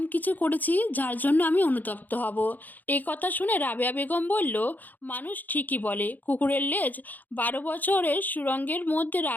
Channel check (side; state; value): right; late; 0.084 ms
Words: কিছু করেছি যার জন্য আমি অনুতপ্ত হব। এই কথা শুনে রাবেয়া বেগম বলল, মানুষ ঠিকই বলে কুকুরের লেজ 12 বছরের সুরঙ্গের মধ্যে